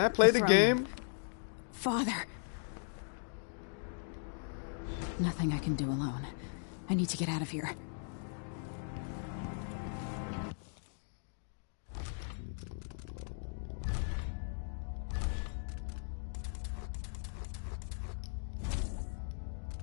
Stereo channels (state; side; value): silent; right; digital silence